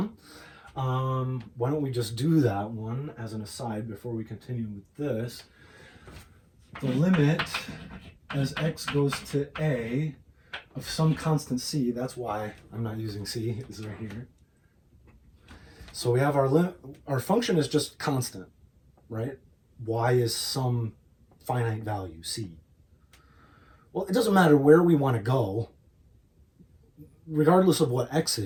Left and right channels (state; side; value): identical; both; correlation 1.00